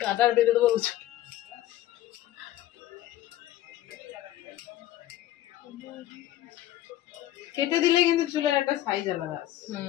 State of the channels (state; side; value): quieter; right; 13.9 dB